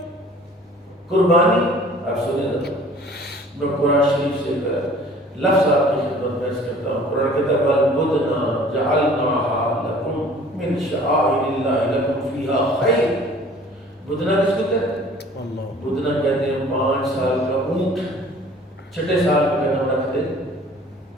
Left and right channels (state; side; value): normal; both; correlation 0.50